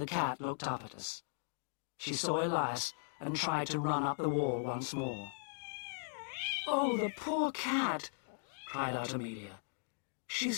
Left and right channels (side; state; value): right; silent; digital silence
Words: cat looked up at us. She saw Elias and tried to run up the wall once more. "Oh, the poor cat!" cried out Amelia.